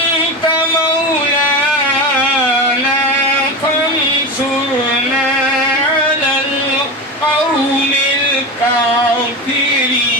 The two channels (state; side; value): normal; both; correlation 0.22